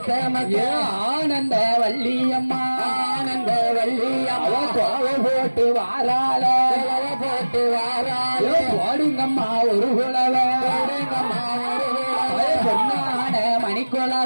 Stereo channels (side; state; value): both; inverted; correlation -1.00